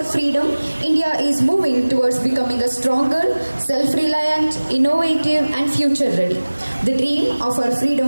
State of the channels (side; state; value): both; inverted; correlation -1.00